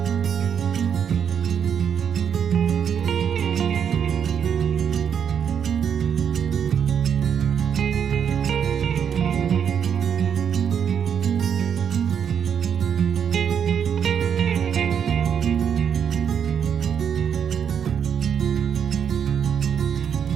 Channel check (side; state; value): left; quieter; 7.9 dB